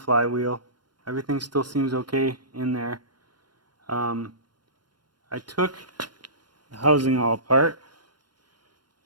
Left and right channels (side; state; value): left; late; 0.71 ms